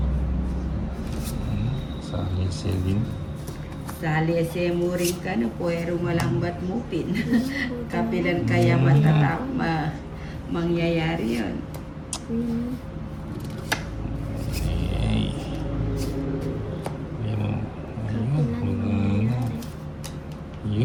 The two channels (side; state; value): both; identical; correlation 1.00